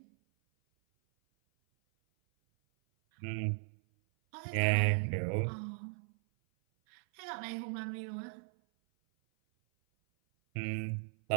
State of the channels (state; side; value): silent; left; 53 dB below the other